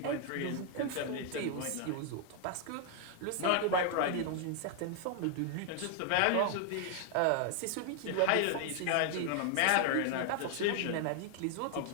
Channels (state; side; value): different; both; correlation 0.00